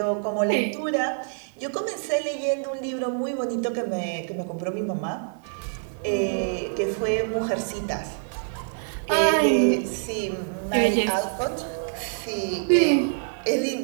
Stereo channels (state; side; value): silent; left; digital silence